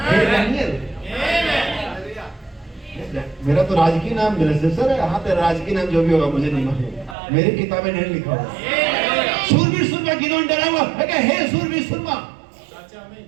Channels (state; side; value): drops out; left; at 7.2 s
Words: डैनियल मेरा तो राजकीय नाम बेलशस्सर है, हाँ तेरा राजकीय नाम जो भी होगा मुझे नहीं मालूम, मेरी किताब में नहीं लिखा हुआ। सूरवीर सुरमा गिदोन डरा हुआ है, हे सूरवीर सुरमा,